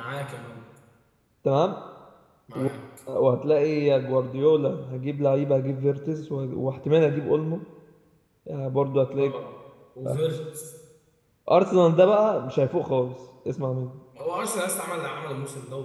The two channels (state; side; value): identical; both; correlation 1.00